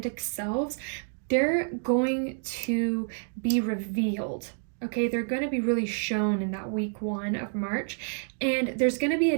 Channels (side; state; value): left; silent; 59 dB below the other